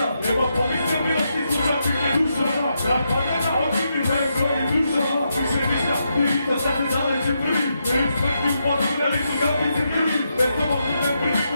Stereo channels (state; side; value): inverted; both; correlation -0.82